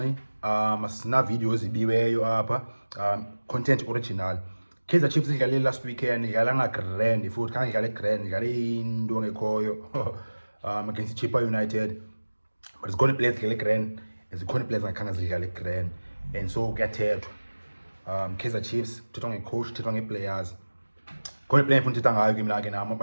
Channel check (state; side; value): inverted; both; correlation -1.00